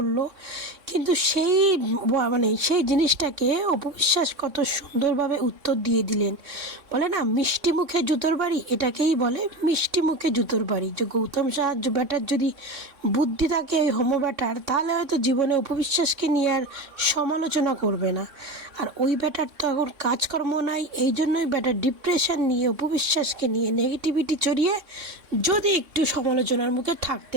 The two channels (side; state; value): left; late; 3.6 ms